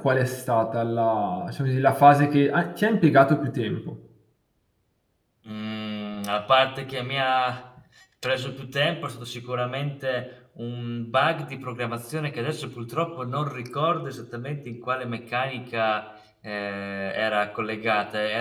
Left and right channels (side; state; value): both; identical; correlation 1.00